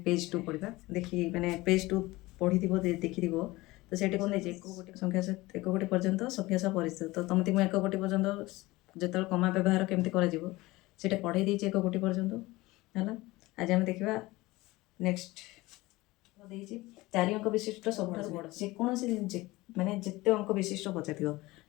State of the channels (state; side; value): quieter; right; 20.2 dB